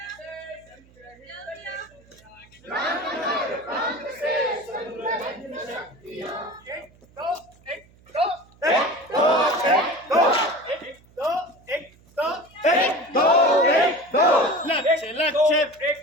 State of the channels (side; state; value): right; noise; hum, 28 dB below the sound